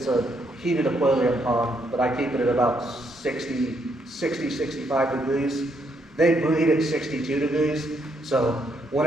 a heated aquarium pond, but I keep it at about 60, 65 degrees. They breed at 62 degrees, so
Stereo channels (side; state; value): both; normal; correlation 0.75